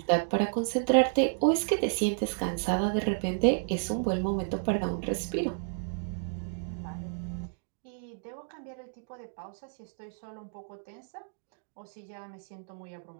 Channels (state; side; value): silent; left; digital silence